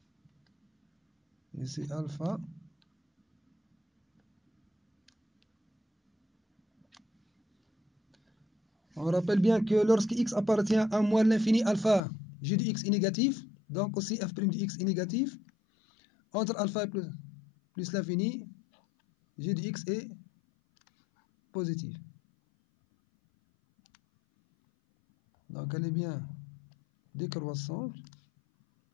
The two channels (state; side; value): drops out; right; at 12.0 s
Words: ici alpha On rappelle bien que lorsque x appartient à moins l'infini alpha, g de x est négatif, donc aussi f' de x est négatif. Entre alpha plus l'infini, g de x est positif. Donc elle est bien décroissante.